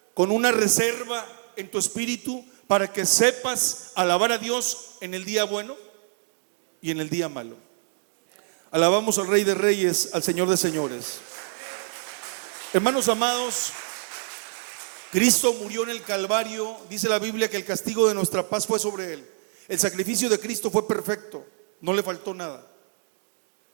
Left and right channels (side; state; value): left; silent; digital silence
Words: con una reserva en tu espíritu para que sepas alabar a Dios en el día bueno y en el día malo. Alabamos al Rey de Reyes, al Señor de Señores. Hermanos amados, Cristo murió en el Calvario. Dice la Biblia que el castigo de nuestra paz fue sobre Él. El sacrificio de Cristo fue perfecto, no le faltó nada.